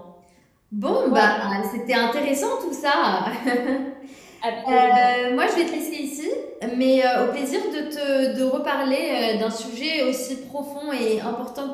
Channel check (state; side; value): identical; both; correlation 1.00